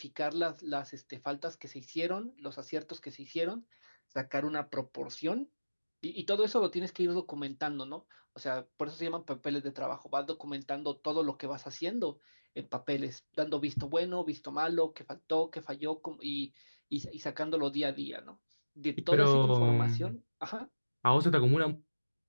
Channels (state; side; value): inverted; both; correlation -1.00